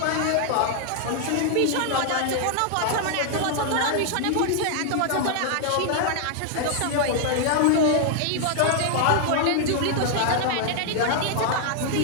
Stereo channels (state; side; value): different; both; correlation 0.00